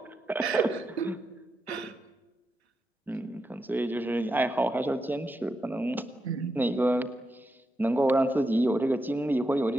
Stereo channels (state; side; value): normal; both; correlation 0.86